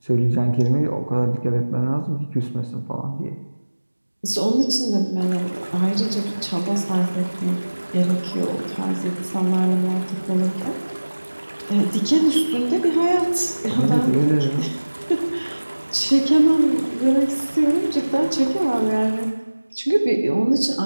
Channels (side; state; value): both; inverted; correlation -1.00